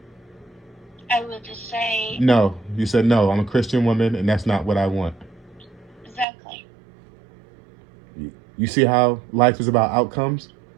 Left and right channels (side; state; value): left; drops out; at 6.2 s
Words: I would just say No. You said, no, I'm a Christian woman and that's not what I want. exactly. You see how life is about outcomes?